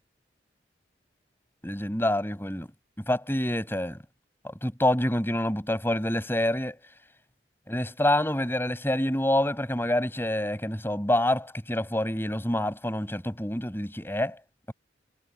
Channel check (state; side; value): normal; both; correlation 0.82